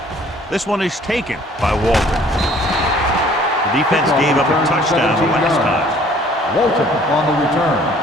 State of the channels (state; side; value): normal; both; correlation 0.56